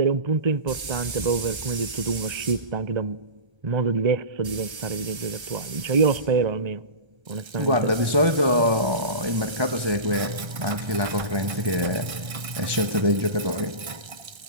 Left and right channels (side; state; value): left; late; 1.3 ms